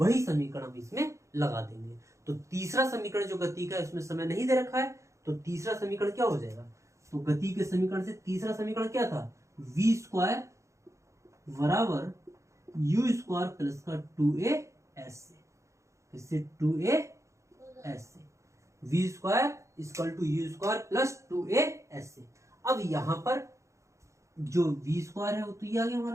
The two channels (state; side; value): late; left; 0.15 ms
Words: समीकरण हम इसमें लगा देंगे। तो तीसरा समीकरण जो गति का है उसमें समय नहीं दे रखा है, तो तीसरा समीकरण क्या हो जाएगा? तो गति के समीकरण से तीसरा समीकरण क्या था? v स्क्वायर बराबर u स्क्वायर प्लस का 2as से, इससे 2as से v square equal to u square plus 2as से। अब यहां पर जो v स्क्वायर है वो तो ये आ गया